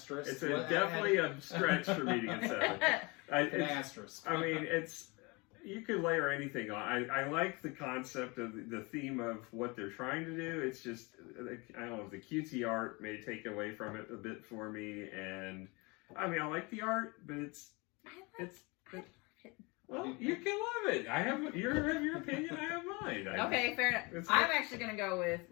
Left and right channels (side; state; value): right; quieter; 27.2 dB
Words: It's definitely a stretch for me to get 7. An asterisk. I mean, you could layer anything on. I like the concept of the theme of what they're trying to do. It's just, I don't know, the cutesy art may take away from it a bit for me. And I mean, I like the art, but well, you can love it. I have your opinion. I have mine. Okay, fair enough. I'm actually going to go with